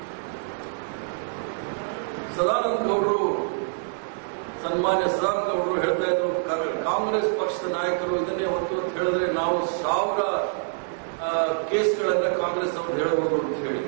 ಸದಾನಂದ ಗೌಡರು, ಸನ್ಮಾನ್ಯ ಸದಾನಂದ ಗೌಡರು ಹೇಳ್ತಾ ಇದ್ರು, ಕಾಂಗ್ರೆಸ್ ಪಕ್ಷದ ನಾಯಕರು ಇದನ್ನೇ ಹೊತ್ತು ಅಂತ ಹೇಳಿದ್ರೆ ನಾವು 1000 ಕೇಸ್ಗಳನ್ನ ಕಾಂಗ್ರೆಸ್ ಅವರು ಹೇಳಬಹುದು ಅಂತ ಹೇಳಿ.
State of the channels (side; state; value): left; silent; 61 dB below the other